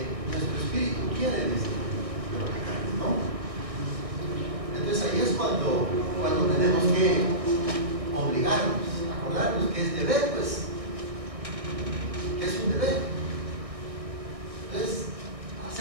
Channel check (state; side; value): late; left; 1.6 ms